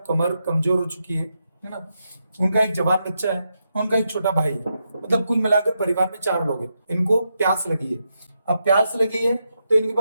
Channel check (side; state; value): both; inverted; correlation -0.84